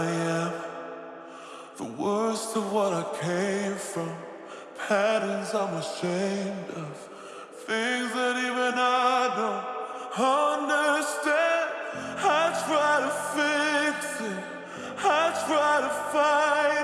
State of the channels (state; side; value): identical; both; correlation 1.00